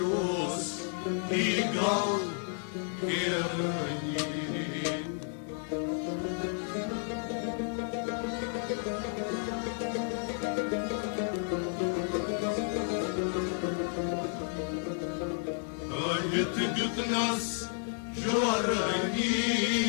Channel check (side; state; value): right; silent; 57 dB below the other